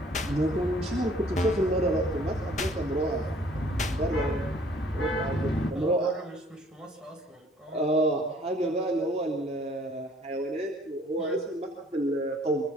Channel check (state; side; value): normal; both; correlation 0.57